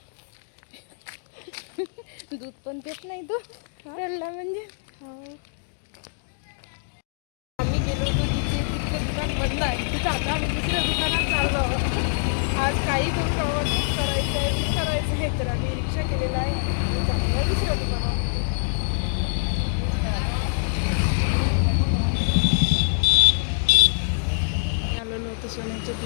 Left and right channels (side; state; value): right; silent; digital silence